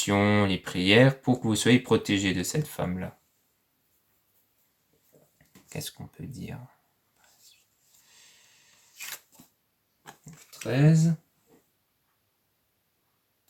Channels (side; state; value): both; identical; correlation 1.00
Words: les prières, pour que vous soyez protégé de cette femme-là. Qu'est-ce qu'on peut dire? 13.